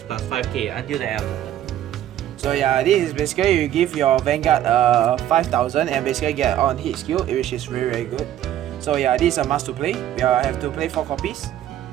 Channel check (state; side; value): quieter; left; 12.0 dB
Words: plus 5k until the end of the turn. So yeah, this is basically you give your Vanguard 5000 and basically get on hit skill, which is very good. So yeah, this is a must to play. We have to play 4 copies.